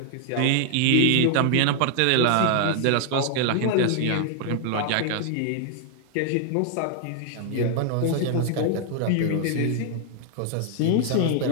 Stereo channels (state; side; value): different; both; correlation 0.00